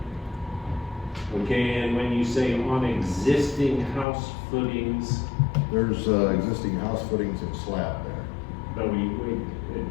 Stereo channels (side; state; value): right; drops out; at 4.0 s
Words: Okay, and when you say on existing house footings, There's existing house footings and slab there. but